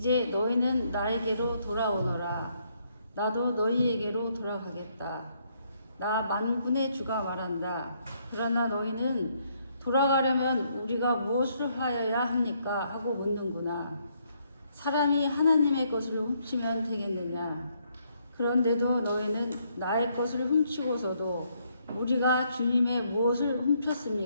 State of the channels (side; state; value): both; inverted; correlation -0.72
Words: 너희는 나에게로 돌아오너라. 나도 너희에게로 돌아가겠다. 나 만군의 주가 말한다. 그러나 너희는 돌아가려면 우리가 무엇을 하여야 합니까? 하고 묻는구나. 사람이 하나님의 것을 훔치면 되겠느냐? 그런데도 너희는 나의 것을 훔치고서도 우리가 주님의 무엇을